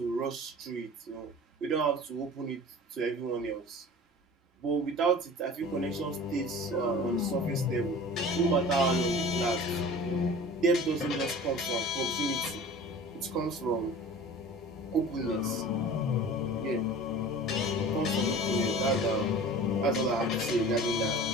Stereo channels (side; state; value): both; normal; correlation 0.40